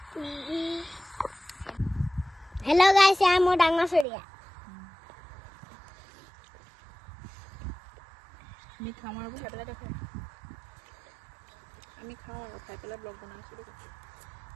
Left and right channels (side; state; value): left; drops out; at 4.0 s